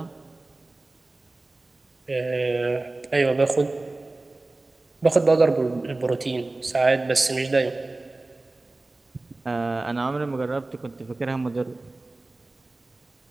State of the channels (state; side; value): quieter; left; 3.0 dB